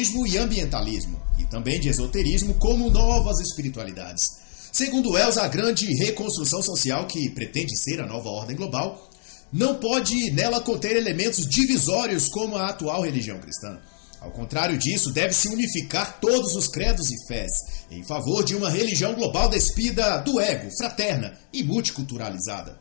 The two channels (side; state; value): right; silent; 60 dB below the other